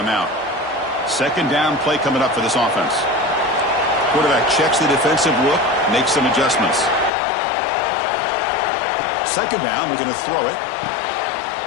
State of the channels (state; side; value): drops out; right; at 7.1 s